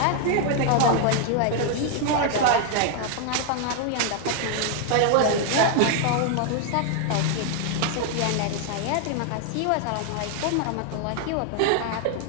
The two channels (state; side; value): different; both; correlation 0.00